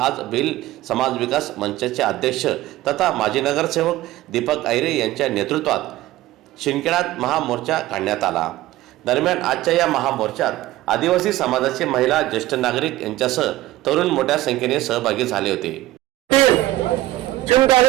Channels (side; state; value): left; quieter; 16.2 dB